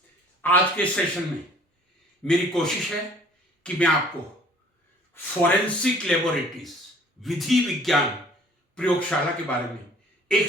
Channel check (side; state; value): both; normal; correlation 0.53